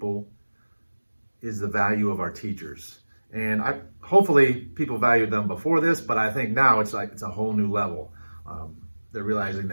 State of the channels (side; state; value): both; inverted; correlation -1.00